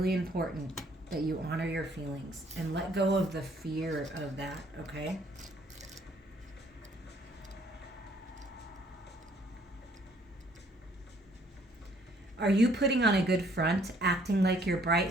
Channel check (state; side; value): normal; both; correlation 0.63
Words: important that you honor your feelings and let go of the fear of that, okay? Are you putting on a good front, acting like you're bright